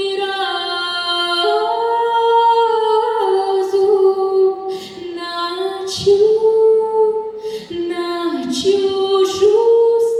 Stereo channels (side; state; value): both; identical; correlation 1.00